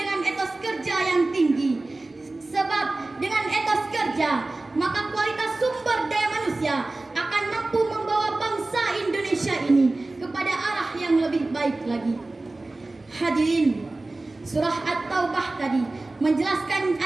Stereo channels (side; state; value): left; quieter; 3.0 dB